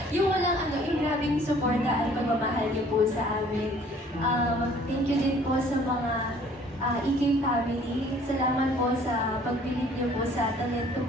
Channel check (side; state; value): both; normal; correlation 0.56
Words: Yung yung grabing suporta at pagmamahal niyo po sa amin. Thank you din po sa mga EK family. Salamat po sa pagbilib niyo po sa talento